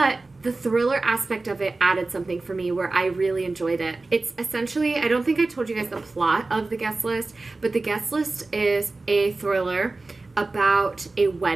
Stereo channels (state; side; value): quieter; left; 3.4 dB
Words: the thriller aspect of it added something for me where I really enjoyed it. It's essentially, I don't think I told you guys the plot of The Guest List, but The Guest List is a thriller about a